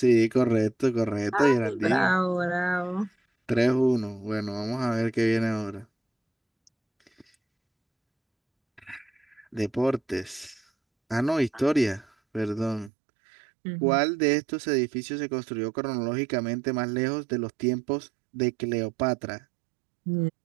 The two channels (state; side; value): drops out; left; at 12.9 s